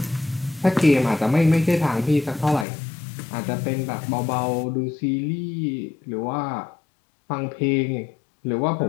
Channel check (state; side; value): drops out; right; at 2.7 s